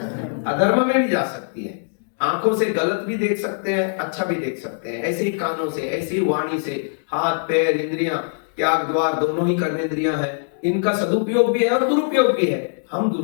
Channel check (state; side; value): silent; right; digital silence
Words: अधर्म में भी जा सकती हैं। आंखों से गलत भी देख सकते हैं, अच्छा भी देख सकते हैं, ऐसे ही कानों से, ऐसे ही वाणी से, हाथ पैर इंद्रियां, त्याग द्वार दोनों ही कर्मेंद्रियां हैं, इनका सदुपयोग भी है और दुरुपयोग भी है। हम